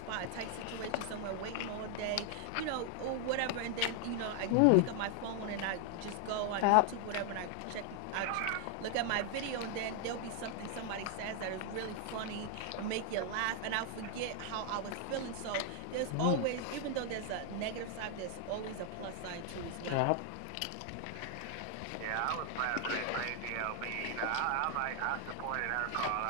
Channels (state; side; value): different; both; correlation 0.00